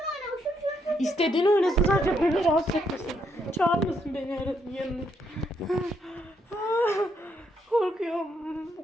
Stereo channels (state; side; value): normal; both; correlation 0.75